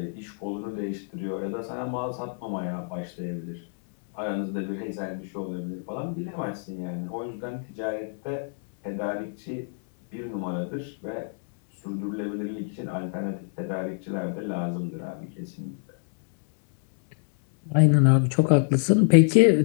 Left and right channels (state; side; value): silent; right; digital silence